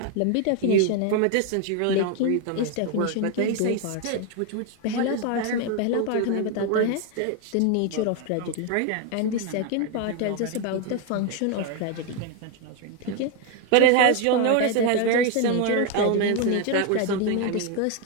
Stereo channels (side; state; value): both; different; correlation 0.01